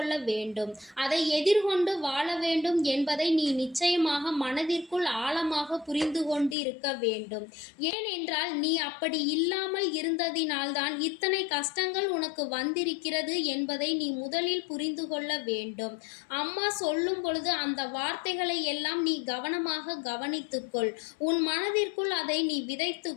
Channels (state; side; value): drops out; right; at 6.6 s